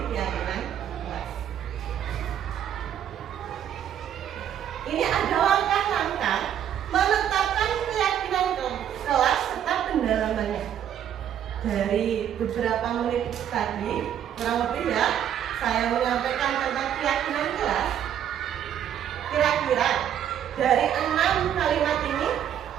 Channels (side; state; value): left; quieter; 9.9 dB